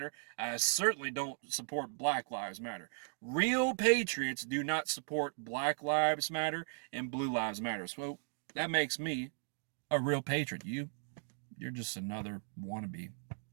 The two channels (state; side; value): silent; left; digital silence